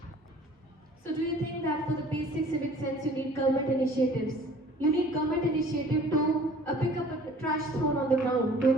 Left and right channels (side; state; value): both; normal; correlation 0.50